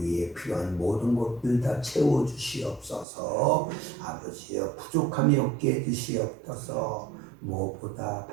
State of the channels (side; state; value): left; drops out; at 3.1 s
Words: 필요한 모든 것들 다 채워 주시옵소서. 아버지여 부족함이 없게 해 주시옵소서. 무엇보다